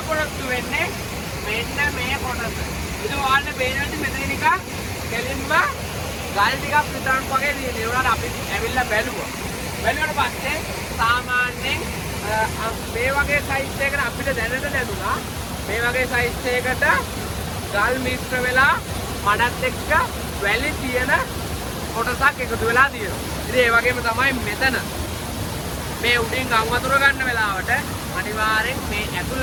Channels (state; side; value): identical; both; correlation 1.00